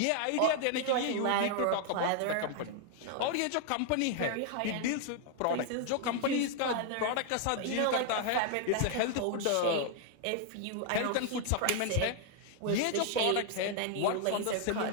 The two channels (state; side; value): different; both; correlation 0.00